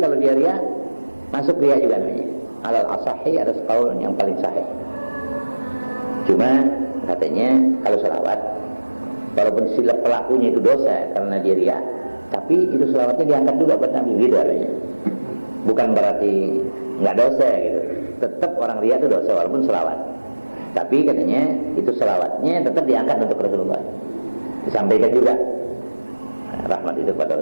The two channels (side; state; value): both; inverted; correlation -1.00